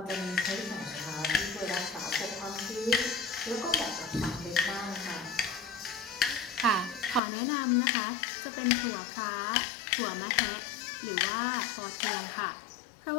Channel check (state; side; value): drops out; right; at 7.2 s